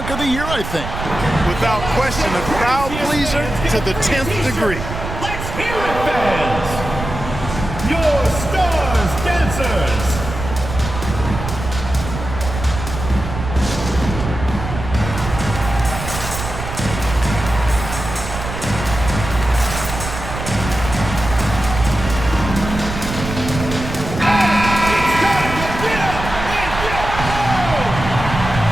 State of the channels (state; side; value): noise; right; rumble, 7 dB below the sound